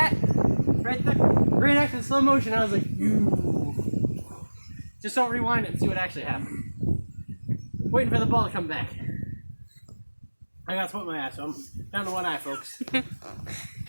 Right there? Right next to slow motion, I was like, "Ooh." Just don't rewind it and see what actually happened. Waiting for the ball to come back. I got to put my ass, so I'm down to one eye, folks.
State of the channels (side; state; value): both; inverted; correlation -1.00